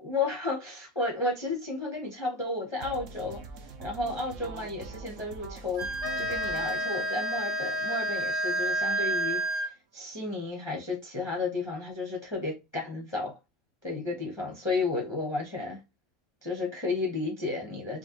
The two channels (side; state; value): both; normal; correlation 0.33